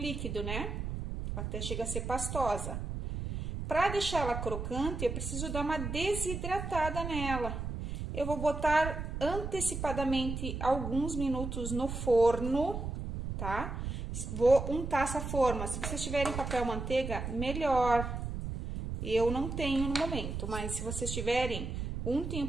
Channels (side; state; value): right; noise; rumble, 5 dB below the sound